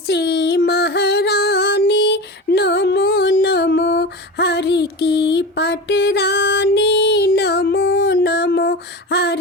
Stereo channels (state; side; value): normal; both; correlation 0.28